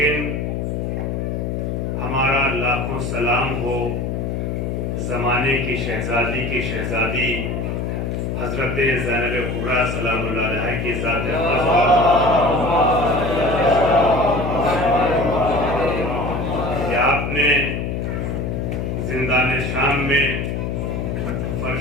ہمارا لاکھوں سلام ہو زمانے کی شہزادی کی شہزادی حضرت زینب کبریٰ سلام اللہ علیہ کی ذات کہ آپ نے زندان شام میں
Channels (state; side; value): noise; left; hum, 2 dB below the sound